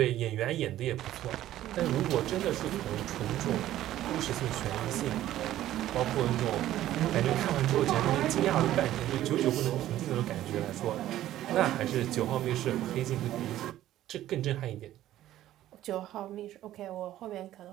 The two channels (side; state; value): left; quieter; 13.5 dB